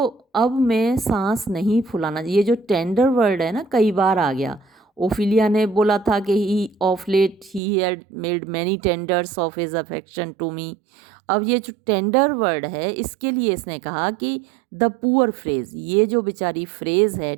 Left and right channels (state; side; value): drops out; left; at 7.6 s